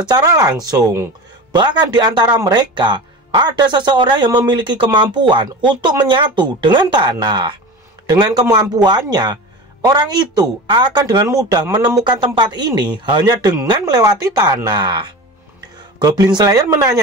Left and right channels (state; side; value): normal; both; correlation 0.31